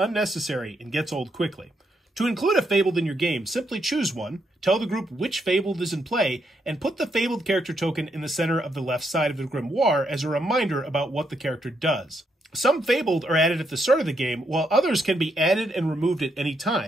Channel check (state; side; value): normal; both; correlation 0.78